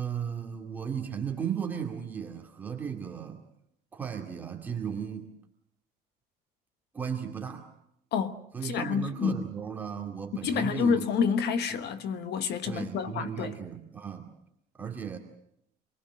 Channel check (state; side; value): normal; both; correlation 0.52